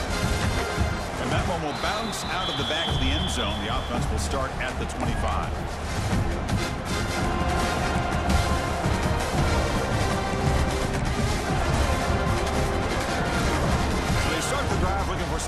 And that one will bounce out of the back of the end zone. The offense will start at the 25. So they start the drive looking for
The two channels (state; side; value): identical; both; correlation 1.00